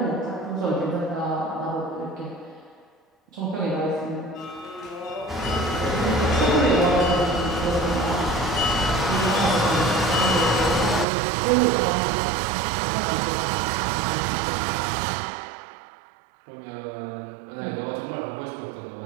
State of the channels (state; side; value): drops out; left; at 11.1 s